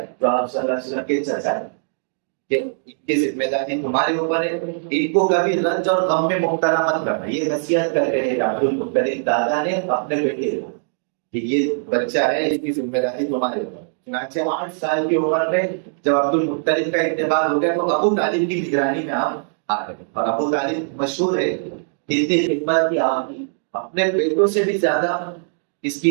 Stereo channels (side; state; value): left; silent; digital silence